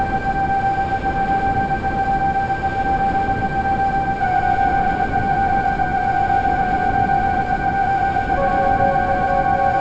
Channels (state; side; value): identical; both; correlation 1.00